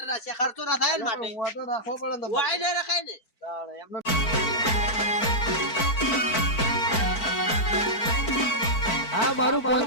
રાખ્યા. ખર્ચો ના થાય ને માટે. હું તો રાખવો પડે ને તમારે. વાય નહીં રખાય ને. તાણે એમને હા મારું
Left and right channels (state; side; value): late; right; 4.5 ms